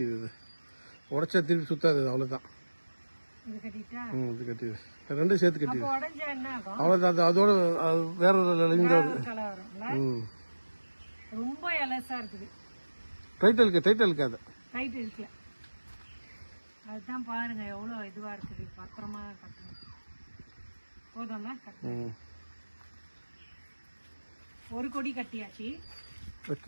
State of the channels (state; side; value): inverted; both; correlation -1.00